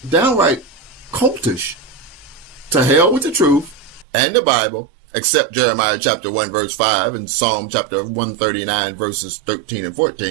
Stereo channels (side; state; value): left; drops out; at 4.0 s